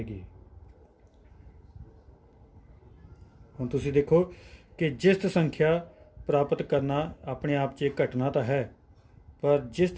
ਹੁਣ ਤੁਸੀਂ ਦੇਖੋ ਕਿ ਜਿਸਤ ਸੰਖਿਆ ਪ੍ਰਾਪਤ ਕਰਨਾ ਆਪਣੇ ਆਪ 'ਚ ਇੱਕ ਘਟਨਾ ਤਾਂ ਹੈ, ਪਰ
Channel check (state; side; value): identical; both; correlation 1.00